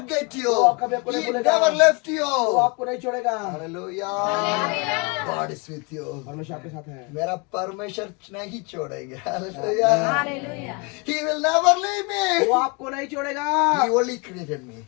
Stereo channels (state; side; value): quieter; right; 30.8 dB